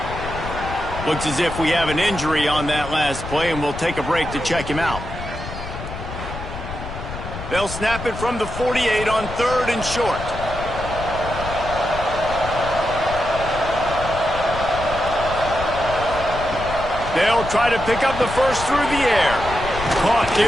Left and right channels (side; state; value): left; noise; rumble, 9 dB below the sound